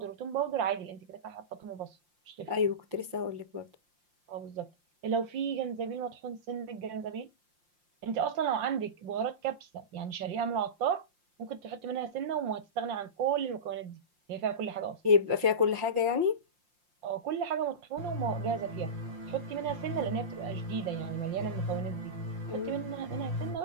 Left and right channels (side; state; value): left; late; 5.7 ms